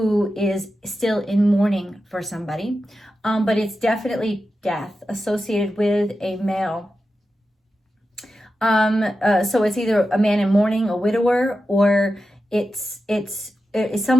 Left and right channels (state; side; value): normal; both; correlation 0.91